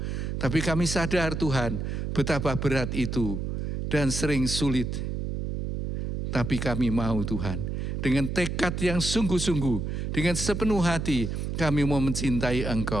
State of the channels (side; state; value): right; noise; hum, 3 dB below the sound